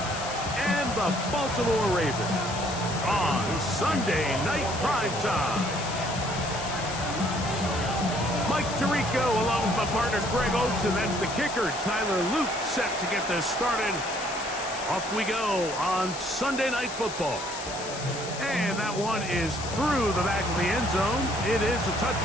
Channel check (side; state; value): left; noise; hiss, 10 dB below the sound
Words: and the Baltimore Ravens on Sunday Night Primetime. Mike Tirico along with my partner Greg Oates, and that's the kicker, Tyler Luke, set to get this started. Off we go on Sunday Night Football. And that one is through the back of the end zone. It is a